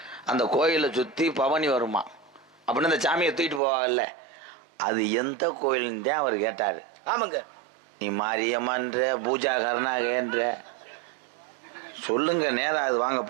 அந்த கோயிலை சுத்தி பவனி வருமா அப்படின்னு அந்த சாமியை தூக்கிட்டு போவாங்கல்ல, அது எந்த கோயில்னு தான் அவர் கேட்டாரு. ஆமாங்க. நீ மாரியம்மன்ற பூஜா கருணாகன்ற சொல்லுங்க, நேரம் அது வாங்க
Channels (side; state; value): left; drops out; at 3.6 s